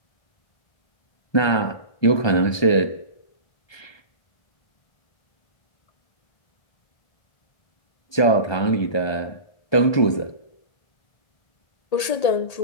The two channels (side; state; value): right; late; 1.8 ms